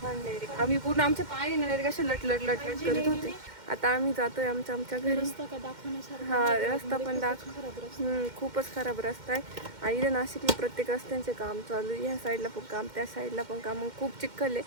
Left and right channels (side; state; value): left; late; 2.1 ms